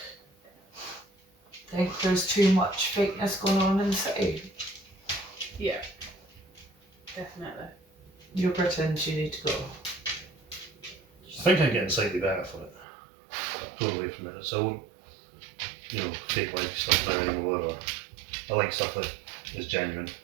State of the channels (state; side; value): drops out; left; at 12.9 s